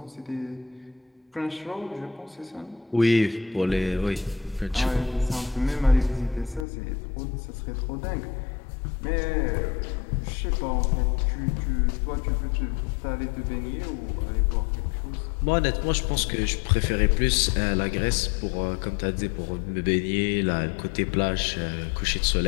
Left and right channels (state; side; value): drops out; right; at 6.7 s